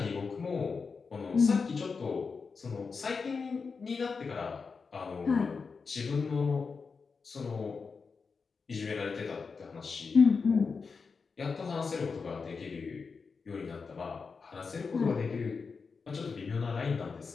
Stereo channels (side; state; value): right; quieter; 5.0 dB